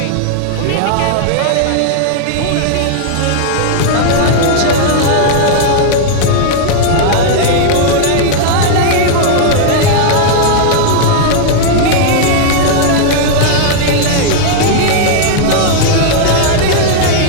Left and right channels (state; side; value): different; both; correlation -0.01